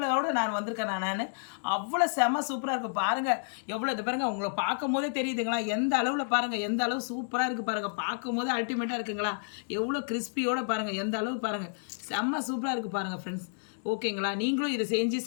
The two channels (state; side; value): silent; right; digital silence